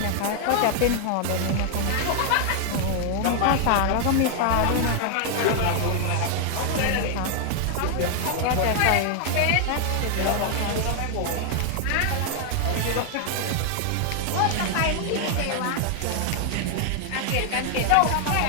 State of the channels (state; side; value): different; both; correlation 0.00